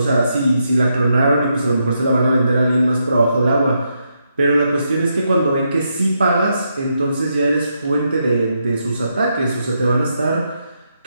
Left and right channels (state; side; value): inverted; both; correlation -0.81